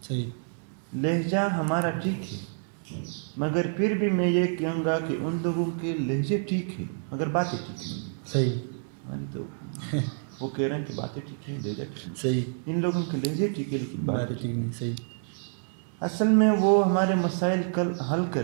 सही। लहजा हमारा ठीक है, मगर फिर भी मैं ये कहूँगा कि उन लोगों के लहजे ठीक है मगर बातें ठीक नहीं। सही। मान तो वो कह रहे हैं कि बातें ठीक है, लहजा ठीक नहीं। सही। इन लोगों के लहजे ठीक है लेकिन बातें ठीक नहीं। सही। असल में वो हमारे मसाइल कल हल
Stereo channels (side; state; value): left; silent; digital silence